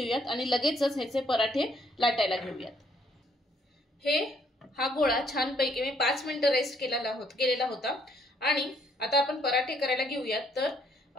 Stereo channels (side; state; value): both; normal; correlation 0.67